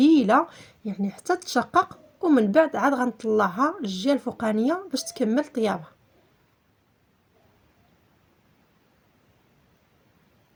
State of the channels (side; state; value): both; identical; correlation 1.00